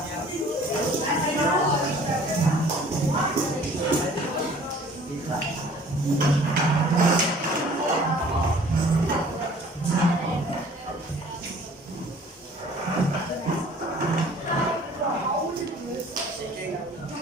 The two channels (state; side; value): normal; both; correlation 0.52